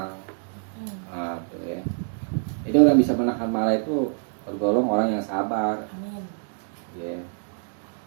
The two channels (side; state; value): left; silent; digital silence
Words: Tuh ya. Jadi orang bisa menahan marah itu tergolong orang yang sabar, Amin. ya.